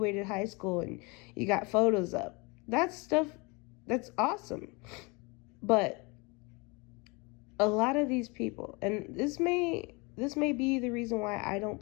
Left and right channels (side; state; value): right; quieter; 28.3 dB